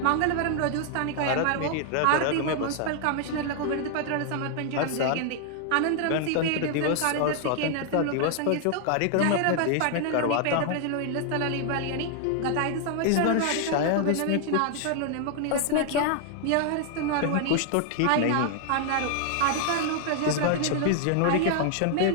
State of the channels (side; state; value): both; different; correlation 0.00